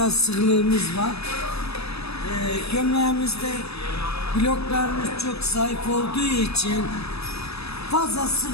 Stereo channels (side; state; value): right; late; 0.78 ms